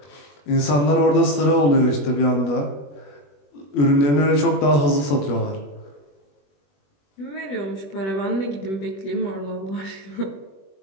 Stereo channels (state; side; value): late; right; 21 ms